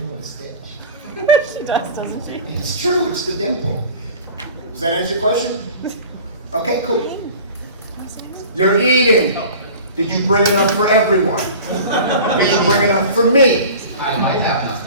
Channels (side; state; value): both; inverted; correlation -0.39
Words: and Stitch. She does, doesn't she? It's true. It's the dimple. Does that answer your question? Okay, cool. You're eating. Did you bring enough for everyone? Did you bring enough for me? I might have enough